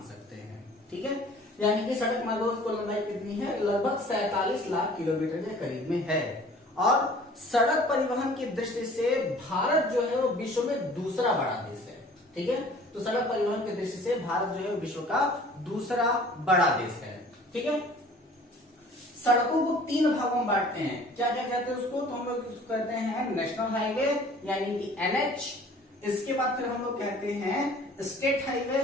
सकते हैं। ठीक है, यानी कि सड़क मार्गों की लंबाई कितनी है? लगभग 47 लाख किलोमीटर के करीब में है। और सड़क परिवहन की दृष्टि से भारत जो है वो विश्व में दूसरा बड़ा देश है। ठीक है, तो सड़क परिवहन की दृष्टि से भारत जो है विश्व का दूसरा बड़ा देश है। ठीक है, सड़कों को 3 भागों में बांटते हैं। क्या क्या कहते हैं उसको? तो हम लोग उसको कहते हैं नेशनल हाईवे, यानी कि NH। इसके बाद फिर हम लोग कहते हैं स्टेट हाईवे,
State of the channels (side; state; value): both; normal; correlation 0.50